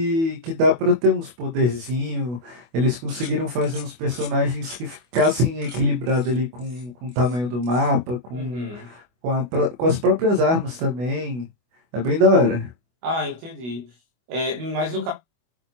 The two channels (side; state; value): left; late; 24 ms